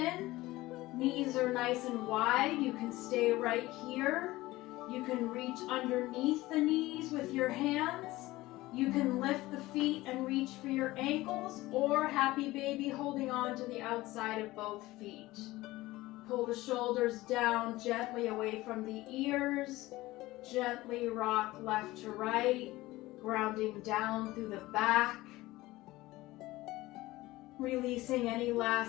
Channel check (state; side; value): quieter; right; 18.5 dB